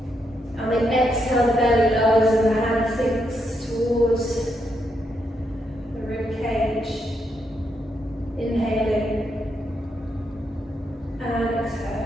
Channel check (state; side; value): normal; both; correlation 0.80